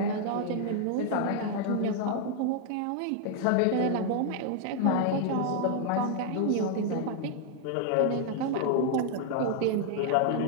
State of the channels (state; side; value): different; both; correlation 0.00